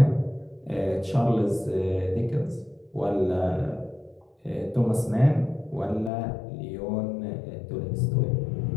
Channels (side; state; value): right; drops out; at 6.1 s